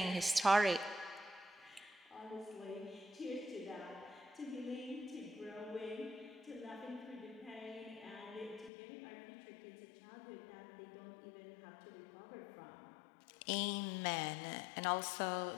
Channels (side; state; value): right; drops out; at 8.7 s